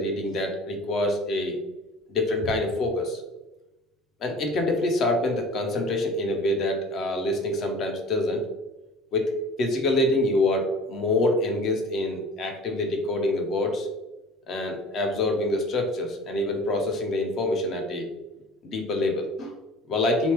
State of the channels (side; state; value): both; normal; correlation 0.43